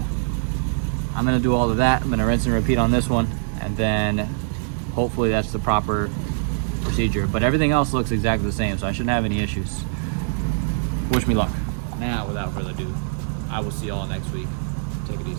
I'm gonna do all of that. I'm gonna rinse and repeat on this one, and then hopefully that's the proper procedure. But everything else looks exactly the same, so I shouldn't have any issues. Wish me luck. Now, without further ado, I will see y'all next week. Take it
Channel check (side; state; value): left; silent; digital silence